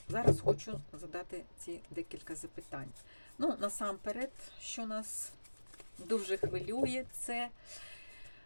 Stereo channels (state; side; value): inverted; both; correlation -1.00